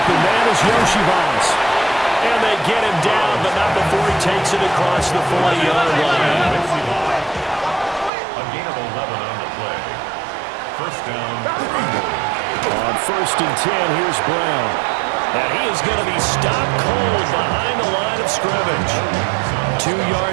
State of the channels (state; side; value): drops out; left; at 8.1 s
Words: man is Yoshivas. And they get him down, but not before he takes it across the 40-yard line. A gain of 11 on the play. First down. On 1st and 10, here's Brown. And he is going to be stopped cold behind the line of scrimmage. 2